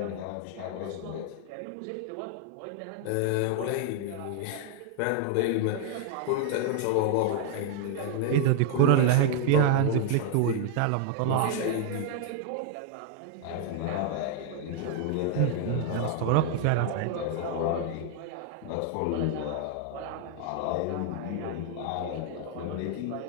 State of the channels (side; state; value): both; different; correlation 0.00